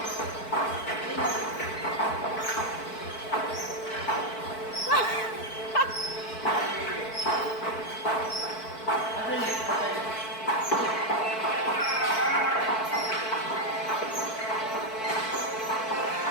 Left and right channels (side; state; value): right; late; 4.5 ms